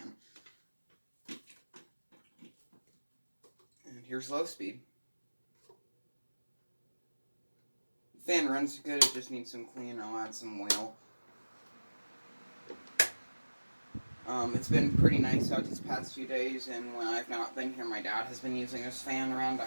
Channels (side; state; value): both; inverted; correlation -1.00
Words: And here's low speed. The fan runs good, it just needs some cleaning. I'll add some oil. It's been pretty nice out these past few days, and when I've not been here, my dad has been using this fan around the